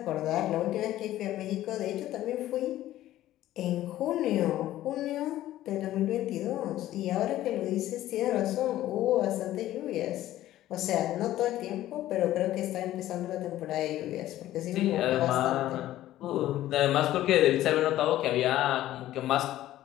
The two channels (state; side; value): quieter; right; 14.1 dB